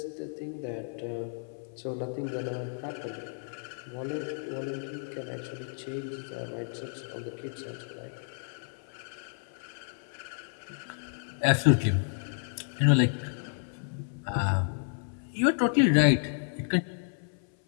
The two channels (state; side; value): silent; right; 57 dB below the other